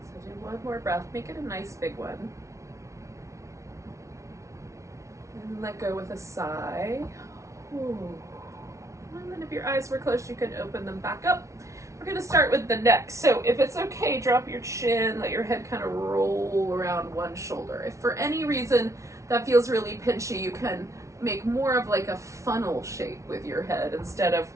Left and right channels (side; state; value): left; late; 0.14 ms